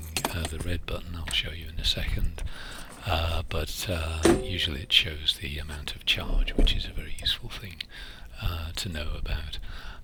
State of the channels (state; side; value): identical; both; correlation 1.00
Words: the red button. I'll show you in a second, but usually it shows the amount of charge, which is a very useful thing to know about.